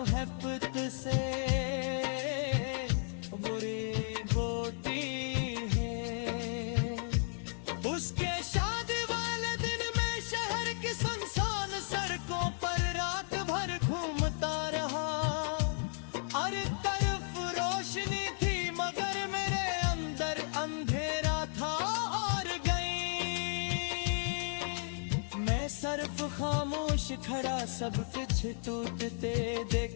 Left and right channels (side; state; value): right; silent; 55 dB below the other